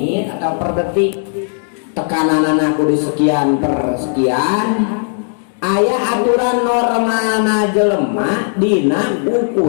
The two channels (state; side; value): silent; right; digital silence